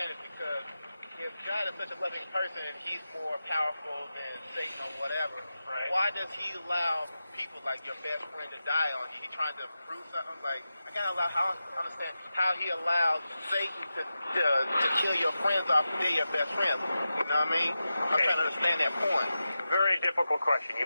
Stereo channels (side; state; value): both; inverted; correlation -0.92